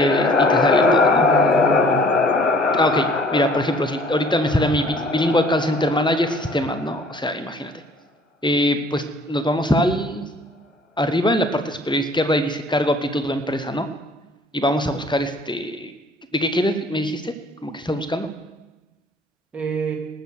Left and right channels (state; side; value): normal; both; correlation 0.54